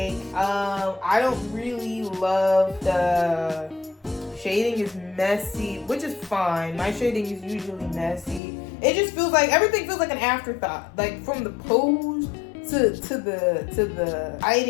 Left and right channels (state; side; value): drops out; right; at 8.4 s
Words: I don't really love the shading is messy, which is fine. My shading is usually messy. It just feels like everything feels like an afterthought. Like from the pose to the